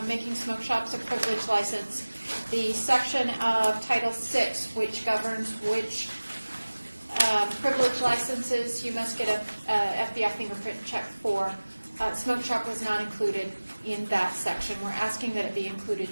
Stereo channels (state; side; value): inverted; both; correlation -1.00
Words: making smoke shops a privilege license, the section of Title VI, which governs which privilege licenses you must get a FBI fingerprint check for, smoke shop was not included in that section. We're asking that it be